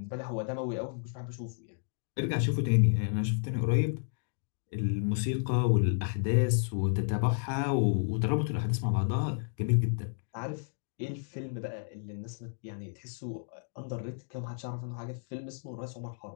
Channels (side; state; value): right; silent; digital silence